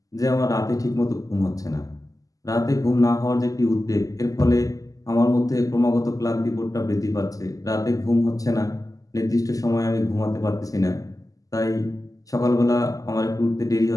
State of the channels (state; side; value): late; right; 0.17 ms